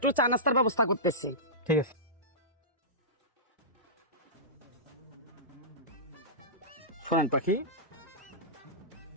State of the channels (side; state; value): both; normal; correlation -0.19